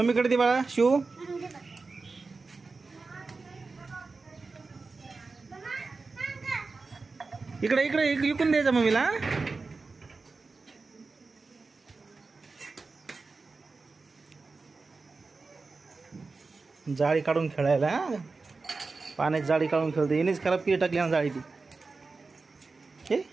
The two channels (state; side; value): quieter; left; 4.0 dB